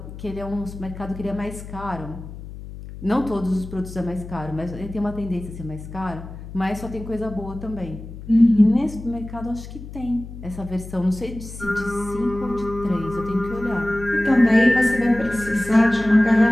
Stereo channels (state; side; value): noise; left; hum, 12 dB below the sound